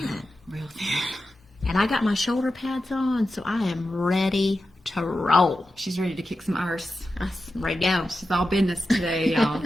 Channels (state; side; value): normal; both; correlation 0.91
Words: Real thin. And I got my shoulder pads on, so I am ready to roll. She's ready to kick some arse. I'm ready to go. She's all business today, y'all.